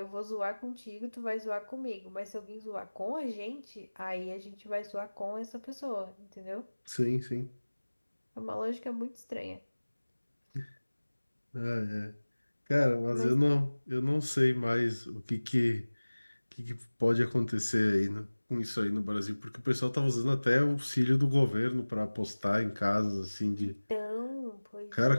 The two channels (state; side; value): inverted; both; correlation -1.00